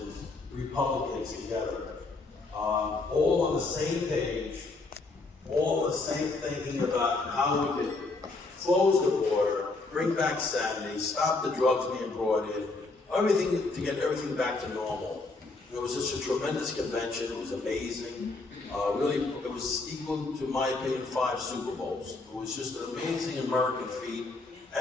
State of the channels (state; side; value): quieter; right; 3.5 dB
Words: Republicans together, all on the same page, all the same thinking about how we could close the border, bring back sanity, stop the drugs being brought in, everything to get everything back to normal. It was just a tremendous convention. It was amazing. Really, it was equal to my opinion 5 Super Bowls. It was just an amazing American feat.